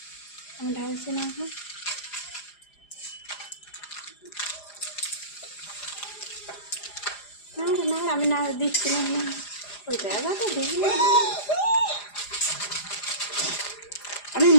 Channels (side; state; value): right; late; 4.9 ms